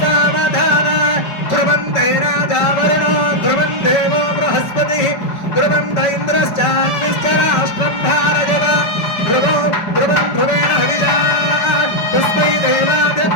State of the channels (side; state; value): right; late; 5.1 ms